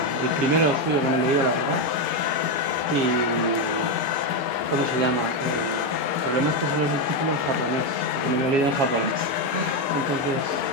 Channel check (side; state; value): left; late; 6.5 ms